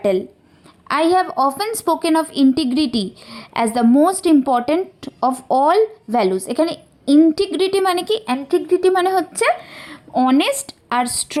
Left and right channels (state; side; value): identical; both; correlation 1.00